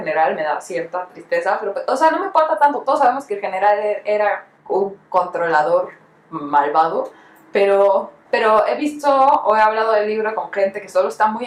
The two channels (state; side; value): identical; both; correlation 1.00